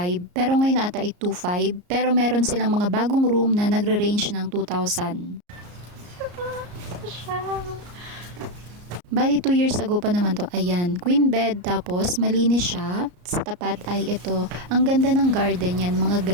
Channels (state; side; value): late; left; 34 ms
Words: pero ngayon ata ay 2.5. Pero meron silang mga bagong room na nagre-range ng 2,000. Bali 2 years ago pa naman to. Ayan, queen bed, tapos malinis siya. Sa tapat ay ito. Ang ganda ng garden yan, mga